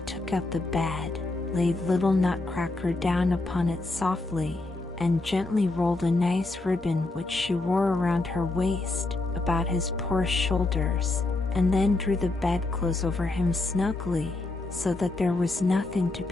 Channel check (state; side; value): quieter; right; 3.0 dB